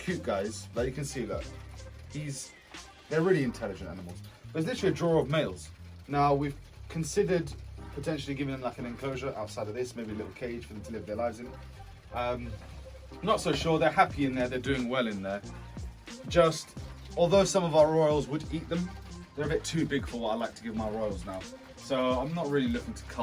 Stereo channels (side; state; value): both; identical; correlation 1.00